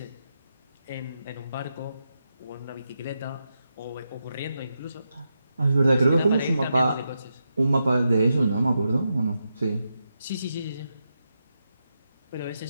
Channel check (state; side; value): inverted; both; correlation -0.86